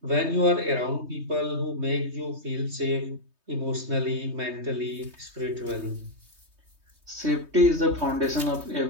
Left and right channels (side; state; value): left; late; 3.2 ms